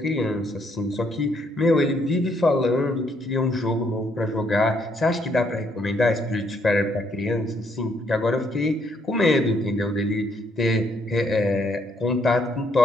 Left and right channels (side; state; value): both; normal; correlation 0.71